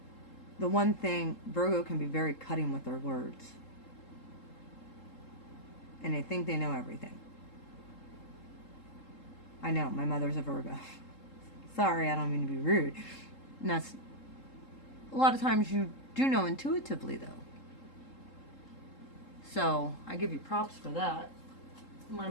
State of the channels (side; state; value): right; late; 3.7 ms